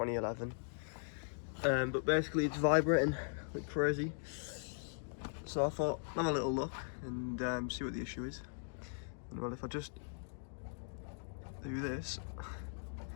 But basically it's vibrating like crazy. So I thought, have a little look and see what the issue is. And well, if I just do this,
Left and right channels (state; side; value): silent; right; digital silence